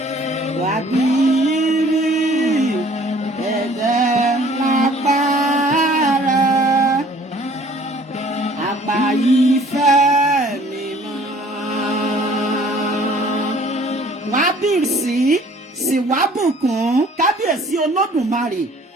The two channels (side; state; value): both; normal; correlation 0.54